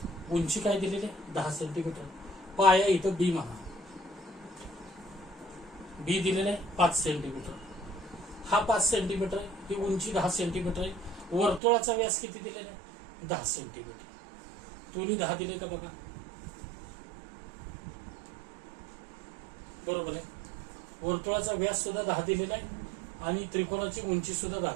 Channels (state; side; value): drops out; left; at 11.6 s